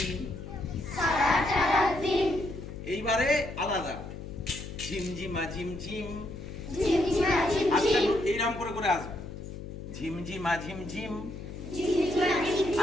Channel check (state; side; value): noise; left; hum, 10 dB below the sound